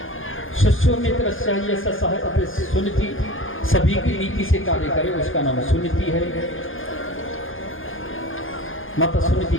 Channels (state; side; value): late; right; 0.59 ms